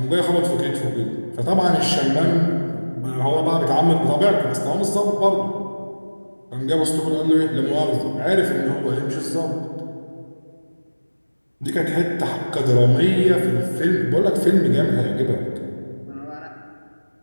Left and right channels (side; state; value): both; inverted; correlation -1.00